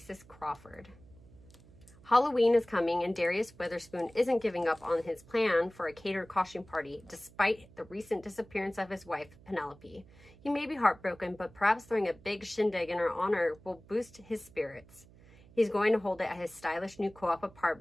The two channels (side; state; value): right; noise; hum, 24 dB below the sound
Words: Crawford. Halloween is coming, and Darius Witherspoon isn't giving up on his plan for a catered costume party, despite the recent disappearance of his wife, Penelope. He may be heartbroken, but perhaps throwing a big shindig in her honor will boost his spirits. He's going to hold it at his stylish new co-op